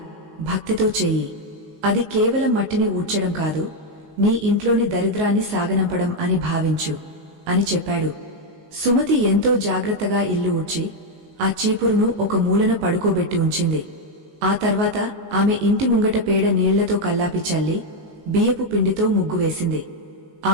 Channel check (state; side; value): late; left; 19 ms